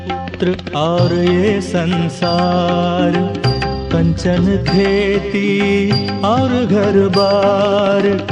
और ये संसार कंचन खेती और घर बार।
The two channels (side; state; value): both; identical; correlation 1.00